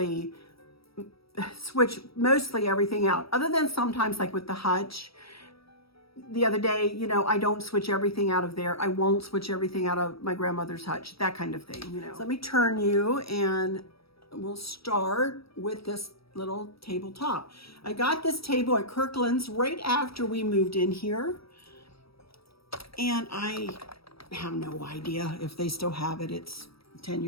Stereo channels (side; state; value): right; late; 0.76 ms